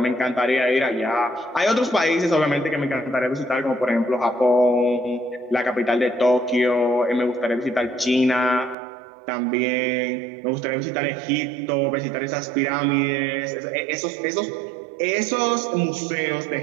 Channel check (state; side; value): drops out; left; at 8.8 s